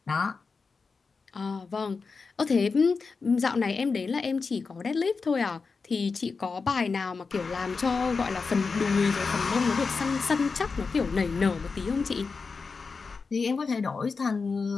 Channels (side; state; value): right; quieter; 4.7 dB